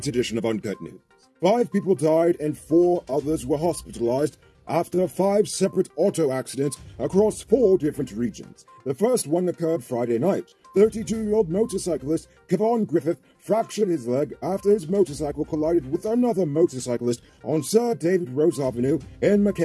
edition of Uncut News. 5 people died and 4 others were hospitalized after 5 separate auto accidents across 4 different regions. The first one occurred Friday night. 32-year-old motorcyclist Kevon Griffith fractured his leg after his motorcycle collided with another motorcyclist on Sir David Rose Avenue in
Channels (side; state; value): both; identical; correlation 1.00